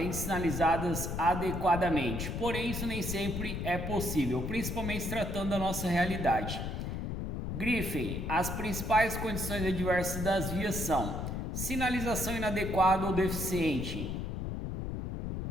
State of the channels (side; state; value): left; noise; rumble, 4 dB below the sound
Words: de sinalizadas adequadamente. Porém, isso nem sempre é possível, principalmente se tratando da nossa realidade. Grifem: as principais condições adversas das vias são sinalização inadequada ou deficiente,